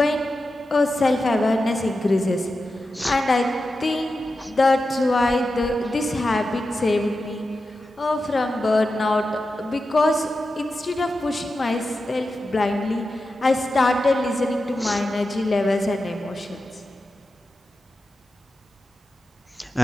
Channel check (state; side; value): normal; both; correlation 0.91